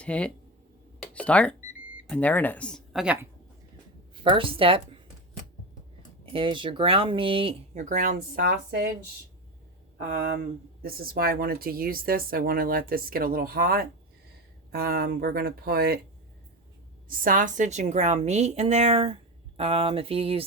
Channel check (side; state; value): both; normal; correlation 0.20